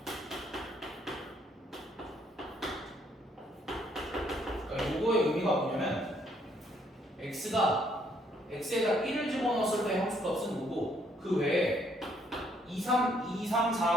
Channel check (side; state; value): both; normal; correlation 0.68